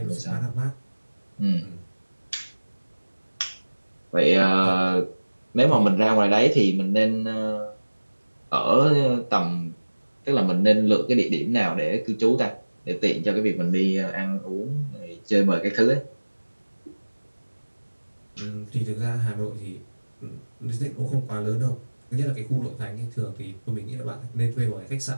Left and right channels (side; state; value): both; inverted; correlation -1.00